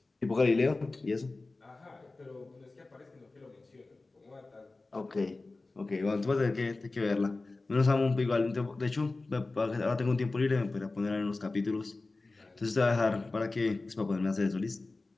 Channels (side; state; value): right; quieter; 3.4 dB